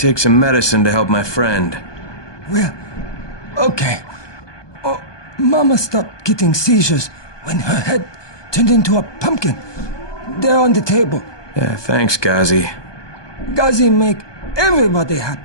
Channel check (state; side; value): late; right; 1.2 ms